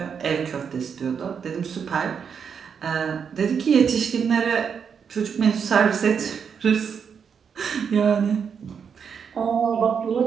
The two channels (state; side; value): quieter; left; 6.8 dB